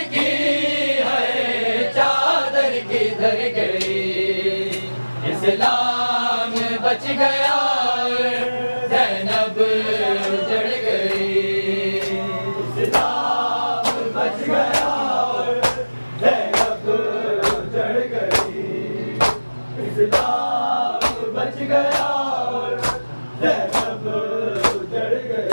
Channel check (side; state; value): both; inverted; correlation -1.00